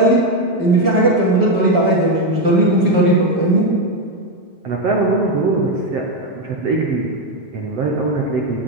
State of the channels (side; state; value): left; late; 5.3 ms